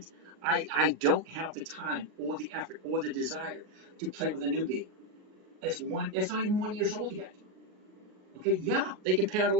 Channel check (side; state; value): left; late; 33 ms